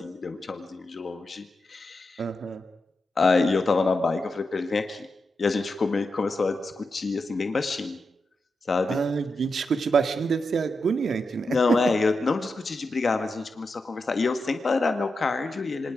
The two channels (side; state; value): both; normal; correlation 0.87